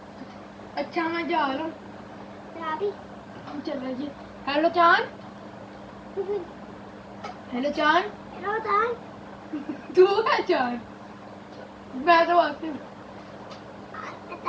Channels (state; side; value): identical; both; correlation 1.00